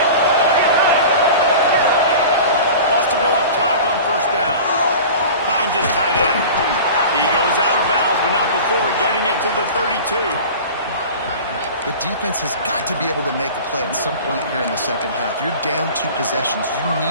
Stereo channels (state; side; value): inverted; both; correlation -0.37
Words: Wants to go up top on first down. Finds his tight end. He goes out of bounds, but not before getting it to the 32. The defense has got to be able to make a play at some point here in the second half. You're down 2 possessions. You